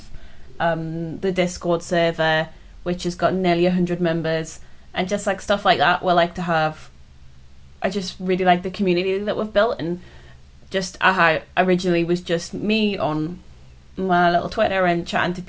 The Discord server, which has got nearly 100 members, and just like stuff like that. We're like to have. I just really like the community that we've built, and just how originally was just me on my little Twitter and chatting to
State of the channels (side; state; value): both; identical; correlation 1.00